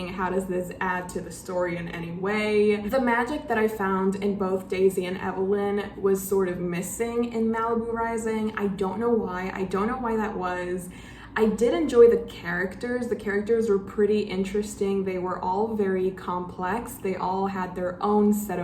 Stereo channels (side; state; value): both; identical; correlation 1.00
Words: How does this add to the story in any way? The magic that I found in both Daisy and Evelyn was sort of missing in Malibu Rising. I don't know why. I don't know why that was. I did enjoy the characters. The characters were pretty interesting. They were all very complex. They all had their own set